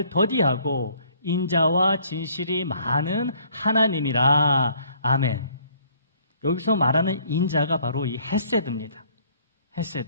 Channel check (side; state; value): both; inverted; correlation -0.60